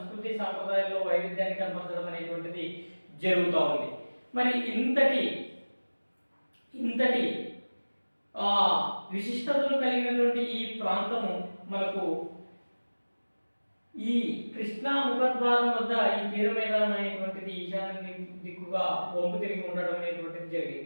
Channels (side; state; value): both; inverted; correlation -1.00